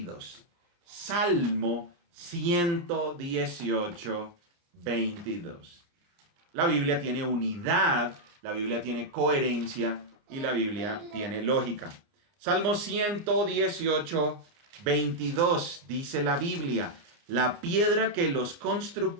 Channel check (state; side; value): late; left; 29 ms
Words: Salmo 118, 22. La Biblia tiene unidad, la Biblia tiene coherencia y la Biblia tiene lógica. Salmo 118, 22 dice la Biblia, la piedra que los